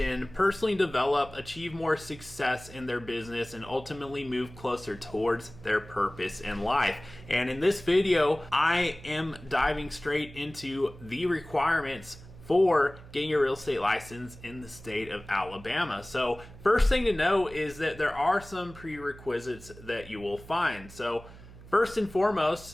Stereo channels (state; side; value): noise; right; hum, 18 dB below the sound